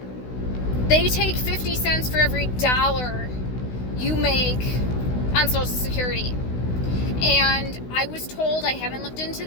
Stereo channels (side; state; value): right; late; 16 ms